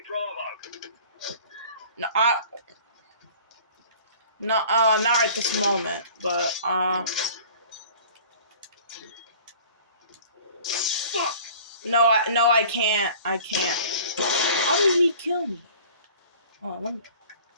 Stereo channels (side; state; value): both; inverted; correlation -0.47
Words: Bravo. No, not right this moment, but, Fuck! No, I can't. I can't. How did he kill me? Oh, let me...